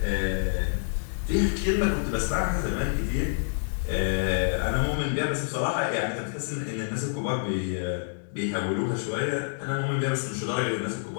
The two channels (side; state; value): right; silent; digital silence